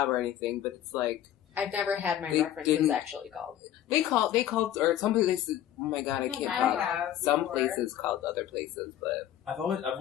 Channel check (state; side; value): quieter; right; 11.6 dB